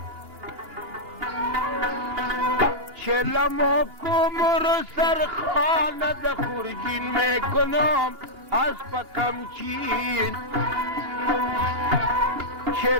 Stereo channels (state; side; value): late; left; 2.8 ms